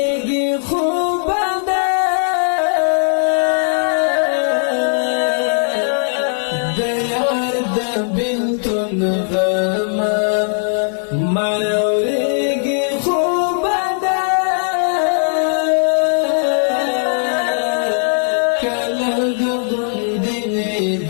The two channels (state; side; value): silent; right; digital silence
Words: خوب نه د یار د بېلتون غم مړوېږي خوب نه کلګ غوندې